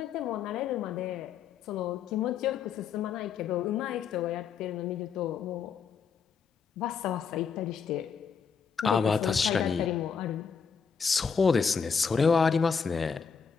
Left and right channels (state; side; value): quieter; right; 6.2 dB